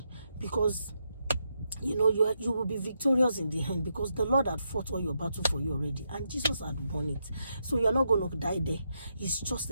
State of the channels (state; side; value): inverted; both; correlation -0.82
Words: because you will be victorious in the end, because the Lord had fought all your battle for you already, and Jesus had won it. So you're not going to die there. It's just